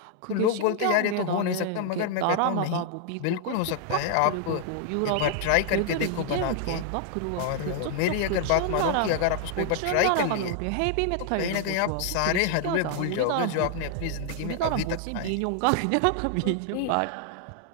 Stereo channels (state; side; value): different; both; correlation -0.01